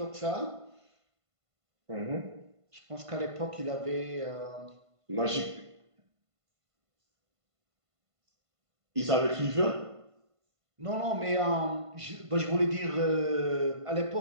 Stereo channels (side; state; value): left; late; 1.5 ms